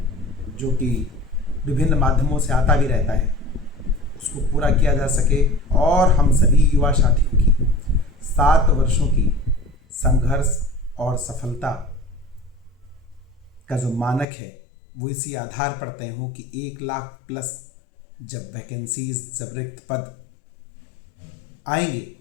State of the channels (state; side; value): drops out; right; at 14.2 s